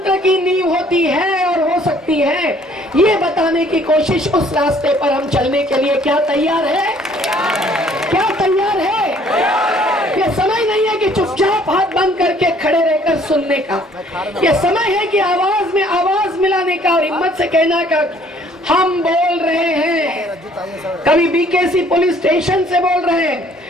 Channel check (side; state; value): both; normal; correlation 0.59